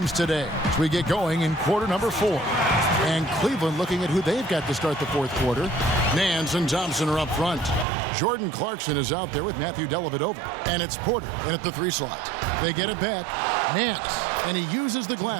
today as we get going in quarter number 4. And Cleveland looking at who they've got to start the fourth quarter. Nance and Thompson are up front. Jordan Clarkson is out there with Matthew Dellavedova. And it's Porter in at the 3 slot. They get it back. Nance, and he uses the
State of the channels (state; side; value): drops out; left; at 7.9 s